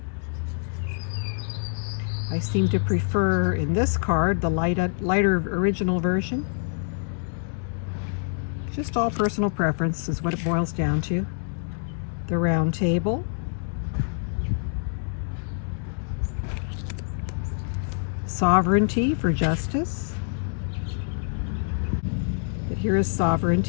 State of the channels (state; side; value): silent; right; digital silence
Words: I seem to prefer in this card the lighter original version. Just all personal preference is what it boils down to. The Round Table. Sovereignty for Justice. But here is